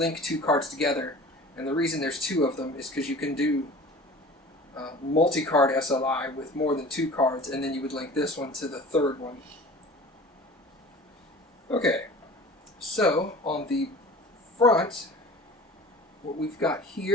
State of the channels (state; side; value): normal; both; correlation 0.41